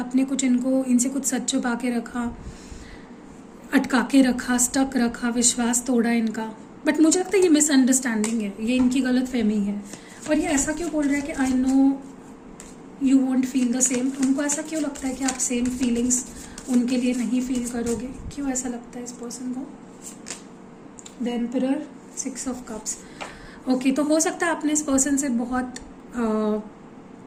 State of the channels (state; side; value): identical; both; correlation 1.00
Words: कुछ इनसे कुछ सच छुपा के रखा, अटका के रखा, स्टक रखा, विश्वास तोड़ा इनका। बट मुझे लगता है ये मिसअंडरस्टैंडिंग है, ये इनकी गलत फहमी है। और ये ऐसा क्यों बोल रहा है कि आई know you want feel the same, उनको ऐसा क्यों लगता है कि आप सेम फीलिंग्स उनके लिए नहीं फील करोगे, क्यों ऐसा लगता है इस पर्सन को। The emperor, 6 of cups, okay. तो हो सकता है आपने इस पर्सन से बहुत